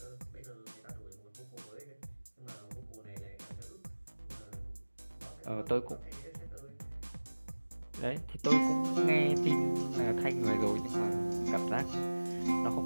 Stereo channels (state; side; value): inverted; both; correlation -1.00